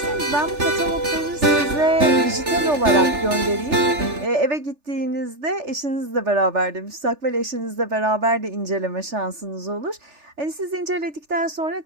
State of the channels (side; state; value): left; late; 3.4 ms